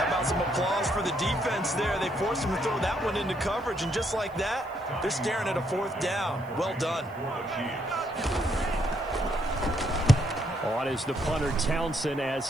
about some applause for the defense there? They forced him to throw that one into coverage, and just like that, they're staring at a fourth down. Well done. On is the punter Townsend as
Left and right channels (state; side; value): noise; right; hiss, 29 dB below the sound